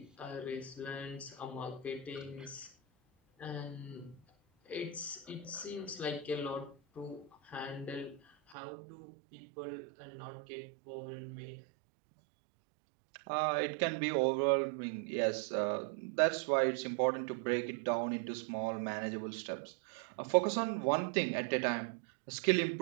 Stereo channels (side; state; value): left; drops out; at 8.6 s